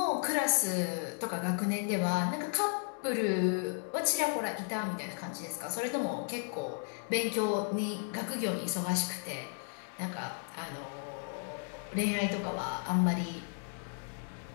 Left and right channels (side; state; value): right; silent; 55 dB below the other